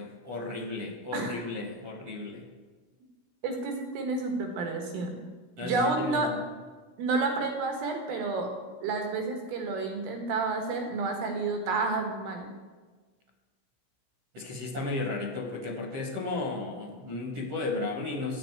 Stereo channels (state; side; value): late; left; 16 ms